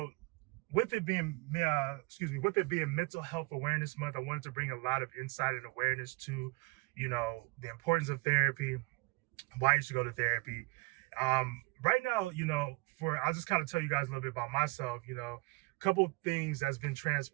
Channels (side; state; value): left; quieter; 25.6 dB